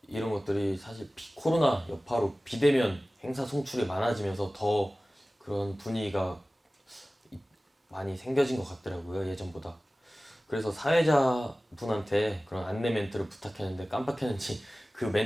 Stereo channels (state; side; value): normal; both; correlation 0.97